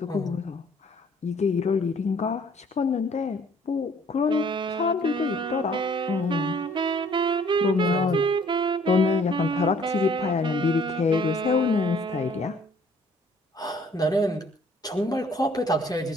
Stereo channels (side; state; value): both; normal; correlation 0.58